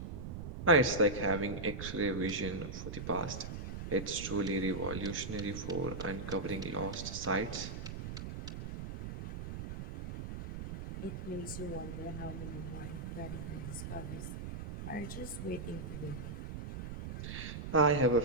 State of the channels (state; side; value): noise; right; rumble, 7 dB below the sound